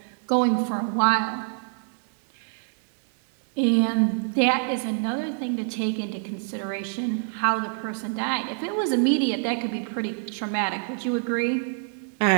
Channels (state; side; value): silent; left; 61 dB below the other